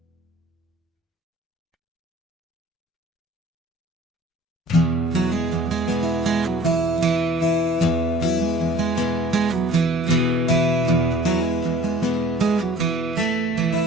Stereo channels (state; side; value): normal; both; correlation 0.49